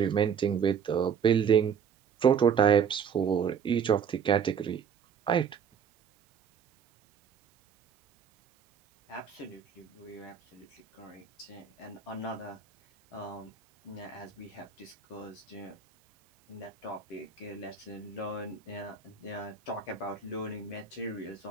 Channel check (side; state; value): left; quieter; 6.9 dB